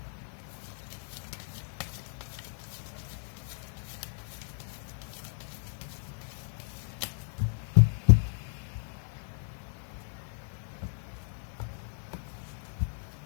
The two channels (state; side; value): silent; right; digital silence